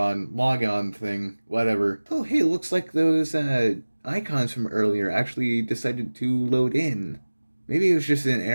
log on thing, whatever. Oh, hey, looks like those icons from earlier actually decided to load in. Maybe it was just an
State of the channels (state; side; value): inverted; both; correlation -1.00